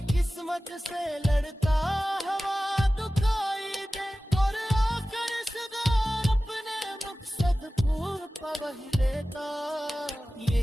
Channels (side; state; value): both; normal; correlation 0.96